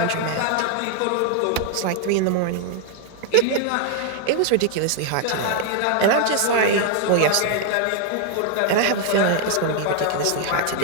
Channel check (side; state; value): both; different; correlation 0.00